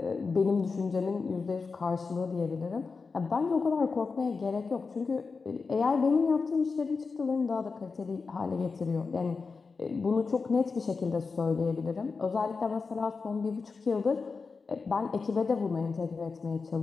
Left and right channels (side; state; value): right; quieter; 4.6 dB